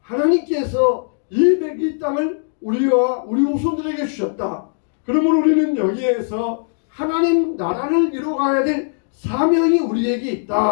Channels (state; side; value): silent; right; digital silence